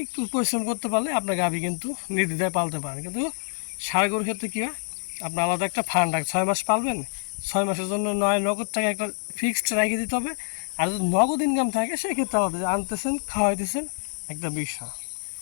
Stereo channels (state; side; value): silent; right; 61 dB below the other